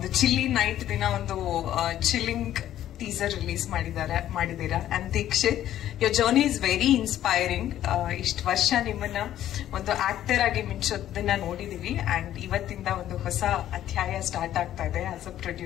ಚಿಲ್ಲಿ ನೈಟ್ ದಿನ ಒಂದು ಚಿಲ್ಲಿಂಗ್ ಟೀಸರ್ ರಿಲೀಸ್ ಮಾಡಿದ್ದೀರಾ. And Dikshit, your journey is very inspiring. ಇಷ್ಟು ವರ್ಷ ನಿಮ್ಮನ್ನ ಒಂದು ಆಕ್ಟರ್ ಆಗಿ ಮಿಂಚೋದನ್ನ ನೋಡಿದೀವಿ. ಅಂಡ್ ಇವತ್ತಿಂದ ಒಂದು ಹೊಸ ಅಧ್ಯಾಯ ಸ್ಟಾರ್ಟ್ ಆಗ್ತಾ ಇದೆ as a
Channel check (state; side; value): quieter; right; 12.1 dB